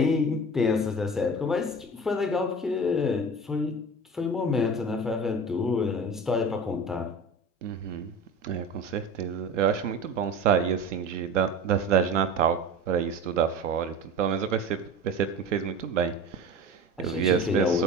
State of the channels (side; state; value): both; normal; correlation 0.35